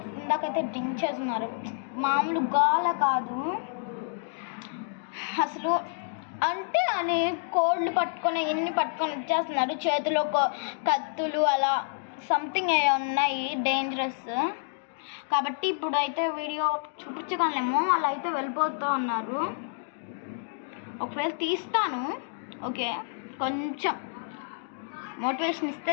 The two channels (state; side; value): silent; right; digital silence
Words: ఇందాకైతే డ్రింక్ చేస్తున్నారు, మామూలు గోల కాదు అసలు. అంటే అని కోళ్ళు పట్టుకొని ఇన్ని పట్టుకొని వచ్చేస్తున్నారు, చేతిలో కత్తులు అలా సంథింగ్ ఉన్నాయి డేంజరస్. కాబట్టి ఇప్పుడు అయితే వీడియో చూపించగలనేమో, అలా అయితే వెళ్ళిపోతూ ఉన్నారు. ఒకవేళ తీస్తాను, ఓకే, కొంచెం మోటివేషన్